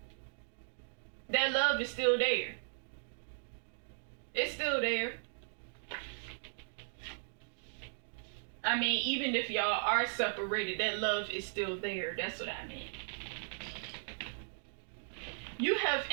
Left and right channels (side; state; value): left; silent; digital silence